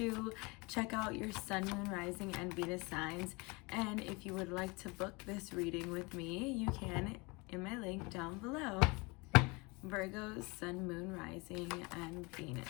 check out your Sun, Moon, Rising, and Venus signs. And if you would like to book this reading with me, you can in my link down below. Virgo, Sun, Moon, Rising, and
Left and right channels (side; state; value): right; quieter; 26.8 dB